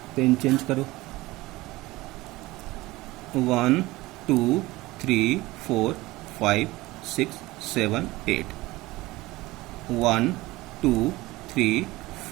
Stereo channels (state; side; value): quieter; left; 19.7 dB